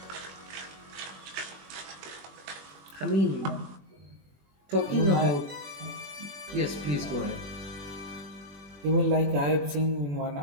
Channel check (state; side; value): late; left; 21 ms